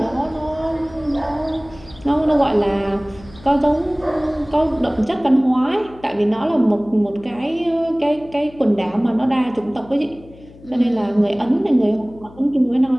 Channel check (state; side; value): noise; left; hum, 22 dB below the sound